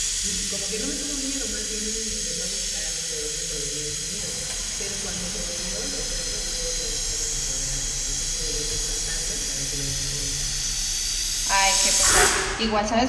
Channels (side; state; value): both; identical; correlation 1.00